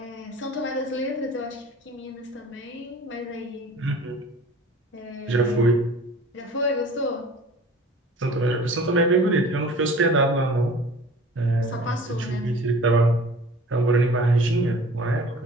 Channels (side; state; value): both; normal; correlation 0.45